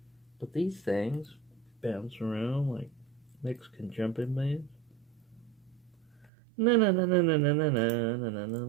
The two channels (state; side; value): drops out; left; at 6.3 s